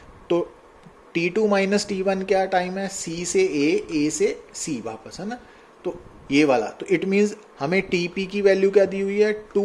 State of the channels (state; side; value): identical; both; correlation 1.00